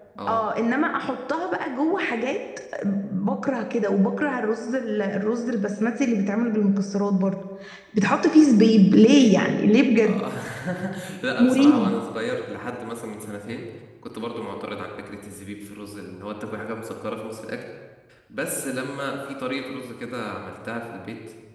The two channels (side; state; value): both; identical; correlation 1.00